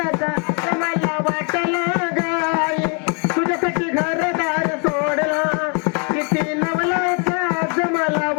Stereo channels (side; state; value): right; quieter; 36.6 dB